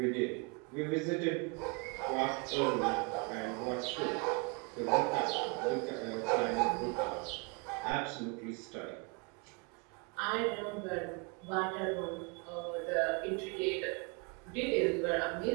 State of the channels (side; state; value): left; quieter; 31.3 dB